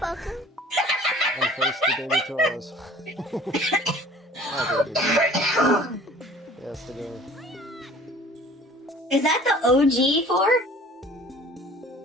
And face the daily chores. Oh, dude. Yes, the game. Is that the OG 4?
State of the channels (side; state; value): both; normal; correlation 0.48